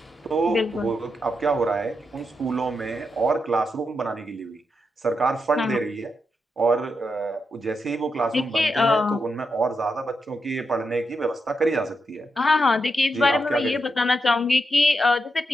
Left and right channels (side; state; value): both; normal; correlation 0.85